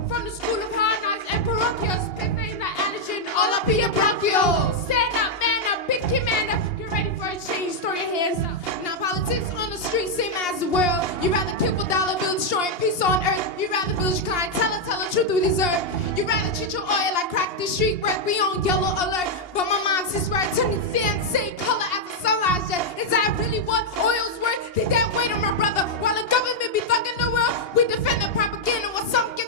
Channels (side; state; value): right; late; 2.8 ms